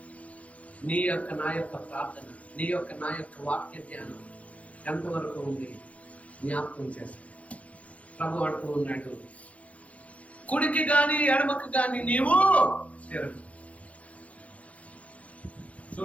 నీ యొక్క నా యొక్క ప్రార్థన, నీ యొక్క నా యొక్క వాక్య ధ్యానం ఎంతవరకు ఉంది జ్ఞాపకం చేస్తాను. ప్రభు అంటూ ఉన్నాడు, కుడికి గాని ఎడమకు గాని నీవు తిరగ.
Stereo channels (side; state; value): right; late; 0.065 ms